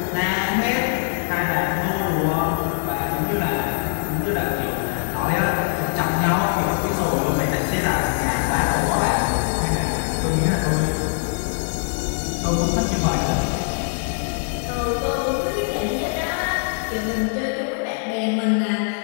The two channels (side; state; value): right; silent; 57 dB below the other